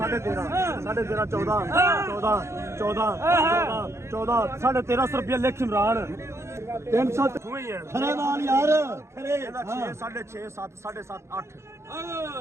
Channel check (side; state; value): left; late; 0.13 ms